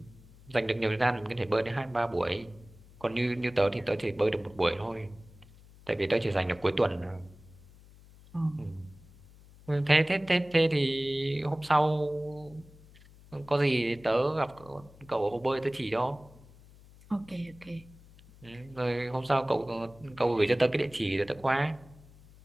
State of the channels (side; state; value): left; noise; hum, 23 dB below the sound